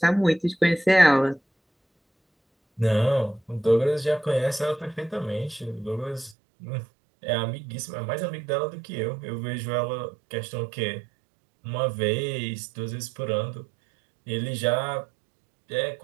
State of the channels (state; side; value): drops out; left; at 6.4 s